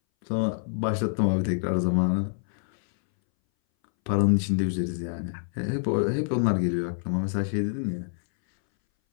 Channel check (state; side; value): silent; right; 60 dB below the other